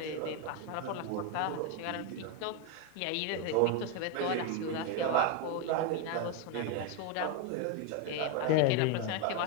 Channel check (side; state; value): both; different; correlation 0.02